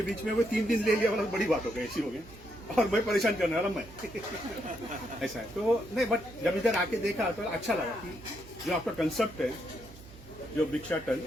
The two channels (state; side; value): noise; right; hum, 19 dB below the sound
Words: बीच में वो 3 दिन ले लिया वाला बड़ी बात हो गई, ऐसी हो गई, और मैं परेशान करने वाला मैं ऐसा है। तो नहीं, बट जब इधर आके देखा तो अच्छा लगा कि जो आपका कंसेप्ट है, जो भिक्षाटन